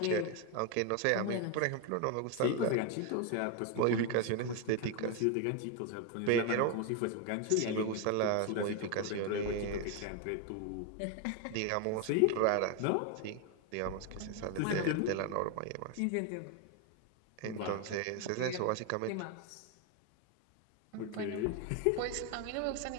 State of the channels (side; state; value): both; different; correlation 0.01